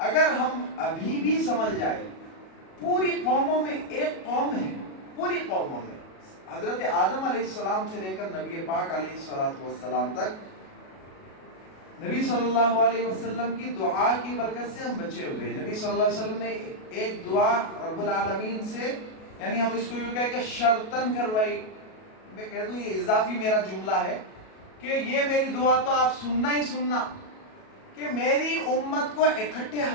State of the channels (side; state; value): right; late; 37 ms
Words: اگر ہم ابھی بھی سمجھ جائیں، پوری قوموں میں ایک قوم ہے، پوری قوموں میں حضرت آدم علیہ السلام سے لے کر نبی پاک علیہ السلام تک، نبی صلی اللہ علیہ وسلم کی دعا کی برکت سے ہم بچے ہوئے. نبی صلی اللہ علیہ وسلم نے ایک دعا رب العالمین سے، یعنی ہم اس کو یوں کہہ کہ شرطن کروائی. میں کہہ دوں یہ اضافی میرا جملہ ہے کہ یہ میری دعا تو آپ سننا ہی سننا، کہ میری امت کو اکٹھے